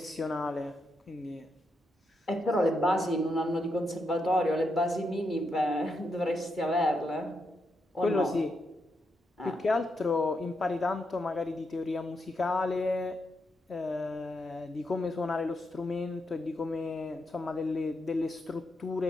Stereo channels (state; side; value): normal; both; correlation 0.82